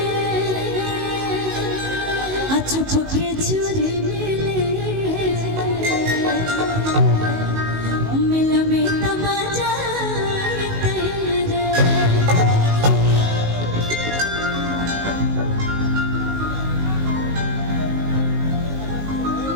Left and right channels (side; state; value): left; late; 19 ms